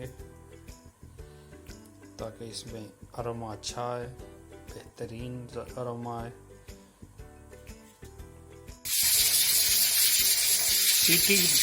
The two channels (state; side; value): identical; both; correlation 1.00